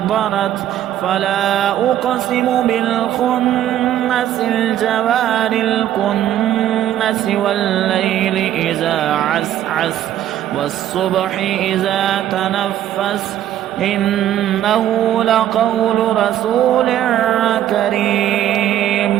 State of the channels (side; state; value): left; quieter; 11.8 dB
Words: فلا أقسم بالخنس الجوار الكنس والليل إذا عسعس والصبح إذا تنفس إنه لقول رسول